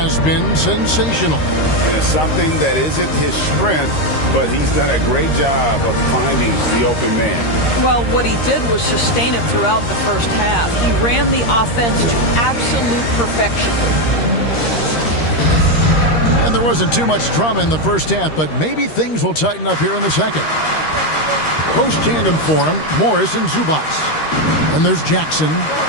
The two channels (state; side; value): late; right; 13 ms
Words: been sensational. And it's something that isn't his strength, but he's done a great job of finding the open man. Well, what he did was sustain it throughout the first half. He ran the offense to absolute perfection. And there wasn't too much drama in the first half, but maybe things will tighten up here in the second. Post tandem for him, Morris and Zubac. And there's Jackson,